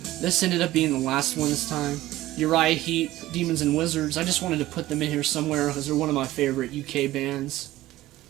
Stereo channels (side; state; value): left; quieter; 16.1 dB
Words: this ended up being the last one this time. Uriah Heep, Demons and Wizards. I just wanted to put them in here somewhere because they're one of my favorite UK bands.